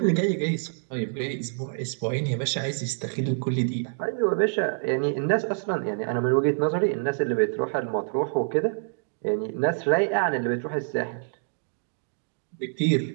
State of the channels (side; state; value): left; silent; digital silence